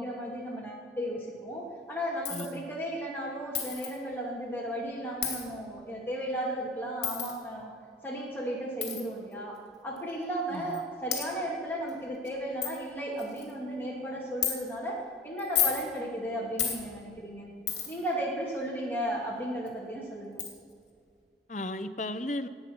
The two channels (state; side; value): normal; both; correlation 0.39